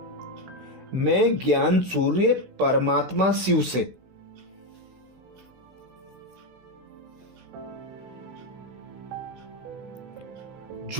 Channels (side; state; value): left; late; 16 ms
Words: मैं ज्ञान सूर्य परमात्मा शिव से